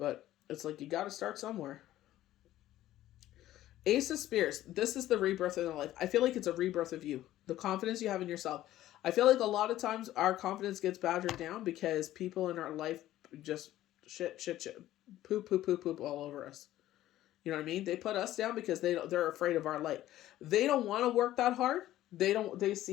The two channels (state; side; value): quieter; right; 14.1 dB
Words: it's like, you gotta start somewhere. Ace of Spears. This is the rebirth in their life. I feel like it's a rebirth of you. The confidence you have in yourself. I feel like a lot of times our confidence gets battered down because people in our life just shit, poop all over us. You know what I mean? They put us down because they're afraid of our light. They don't want to work that hard. They